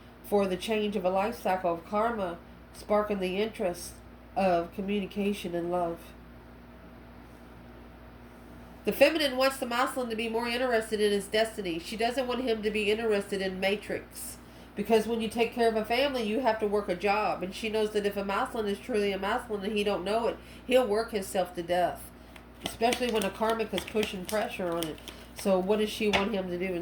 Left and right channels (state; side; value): identical; both; correlation 1.00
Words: for the change of a life cycle of karma, sparking the interest of communication and love. The feminine wants the masculine to be more interested in his destiny. She doesn't want him to be interested in matrix. Because when you take care of a family, you have to work a job. And she knows that if a masculine is truly a masculine and he don't know it, he'll work himself to death. Especially when a karmic is pushing pressure on it. So what does she want him to do